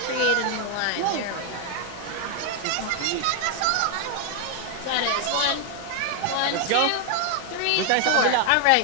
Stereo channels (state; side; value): different; both; correlation 0.01